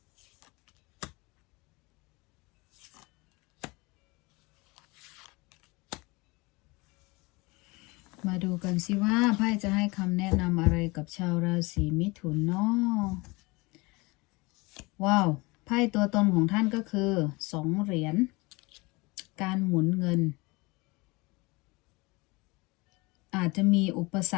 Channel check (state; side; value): quieter; right; 25.1 dB